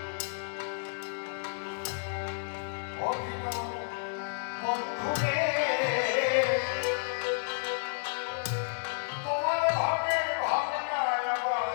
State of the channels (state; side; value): silent; right; digital silence